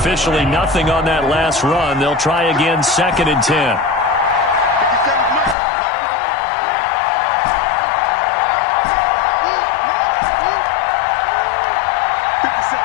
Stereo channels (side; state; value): right; drops out; at 5.6 s